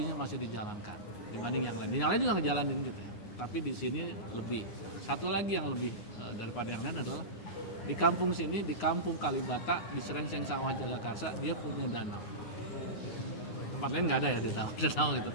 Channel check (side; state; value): right; late; 9.6 ms